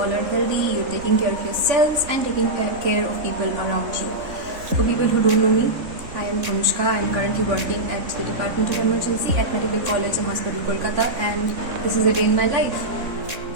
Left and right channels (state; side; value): late; left; 3.6 ms